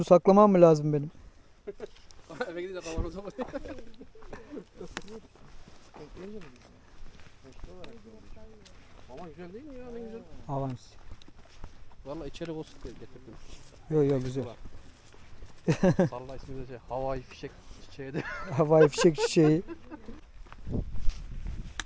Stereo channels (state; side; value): identical; both; correlation 1.00